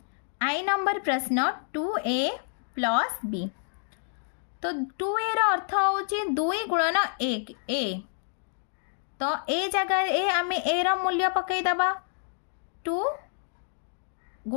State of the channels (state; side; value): silent; right; digital silence